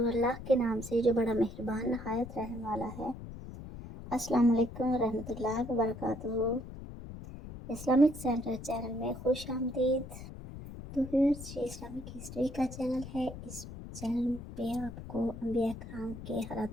اللہ کے نام سے جو بڑا مہربان نہایت رحم والا ہے۔ السلام علیکم ورحمۃ اللہ وبرکاتہ۔ اسلامک سینٹر چینل میں خوش آمدید۔ تو ویورز، یہ اسلامک ہسٹری کا چینل ہے۔ اس چینل پہ آپ کو انبیاء کرام کے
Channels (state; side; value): noise; left; rumble, 12 dB below the sound